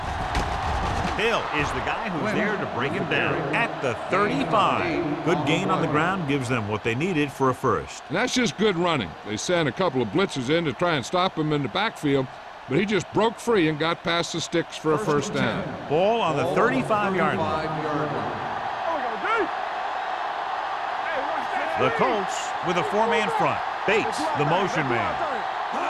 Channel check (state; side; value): identical; both; correlation 1.00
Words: Hill is the guy who's there to break him down at the 35. Good gain on the ground gives them what they needed for a first. And that's just good running. They sent a couple of blitzes in to try and stop him in the backfield, but he just broke free and got past the sticks for a first down. Ball on the 35-yard line. The Colts with a four-man front. Bates, the motion man.